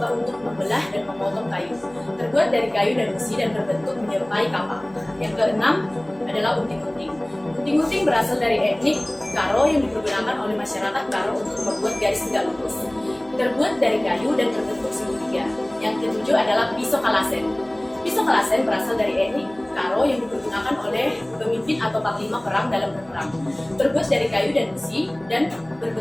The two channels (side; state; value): right; noise; hum, 26 dB below the sound